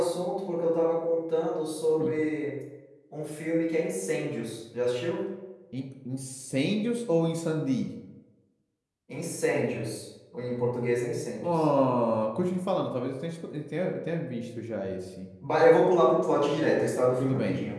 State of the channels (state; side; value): identical; both; correlation 1.00